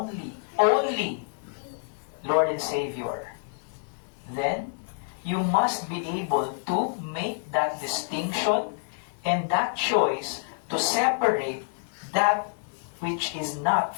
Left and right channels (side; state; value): right; silent; digital silence